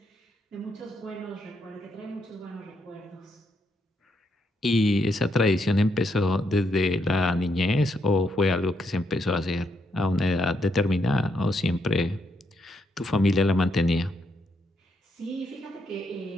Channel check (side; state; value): both; normal; correlation 0.77